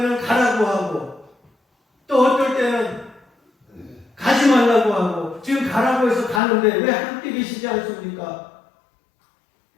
가라고 하고 또 어떨 때는 가지 말라고 하고 지금 가라고 해서 가는데 왜 함께 계시지 않습니까?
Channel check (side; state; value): right; drops out; at 6.4 s